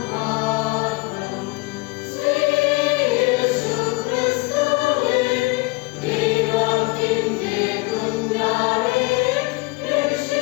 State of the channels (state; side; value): quieter; right; 24.9 dB